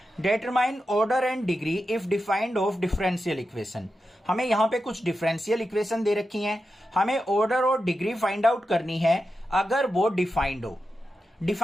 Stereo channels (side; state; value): both; normal; correlation 0.89